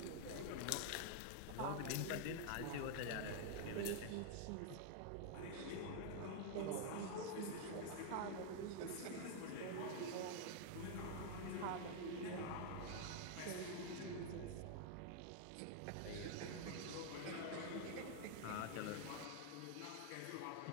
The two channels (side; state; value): both; different; correlation 0.00